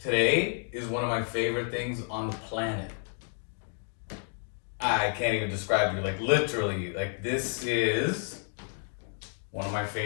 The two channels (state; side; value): silent; right; 55 dB below the other